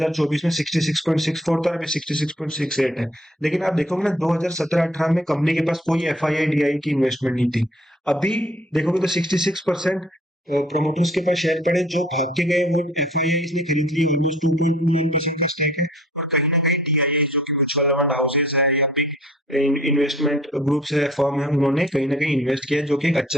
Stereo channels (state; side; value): normal; both; correlation 0.56